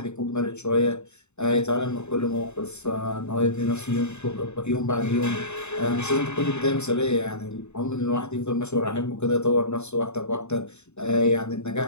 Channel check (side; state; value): right; late; 0.82 ms